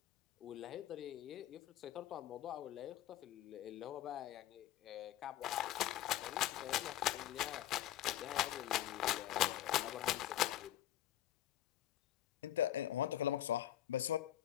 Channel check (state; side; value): quieter; right; 12.8 dB